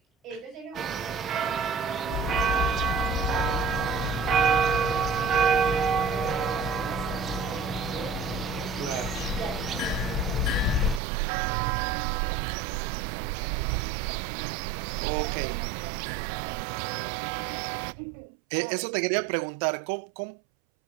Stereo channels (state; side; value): drops out; left; at 11.0 s